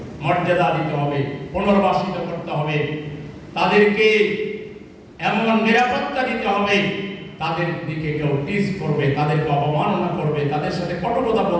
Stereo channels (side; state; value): both; identical; correlation 1.00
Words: মর্যাদা দিতে হবে, পুনর্বাসিত করতে হবে, তাদেরকে এমন নিরাপত্তা দিতে হবে, তাদের দিকে কেউ টিজ করবে, তাদেরকে অবমাননা করবে, তাদের সাথে কটুকথা